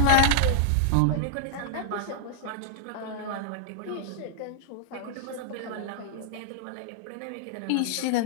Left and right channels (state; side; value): different; both; correlation -0.01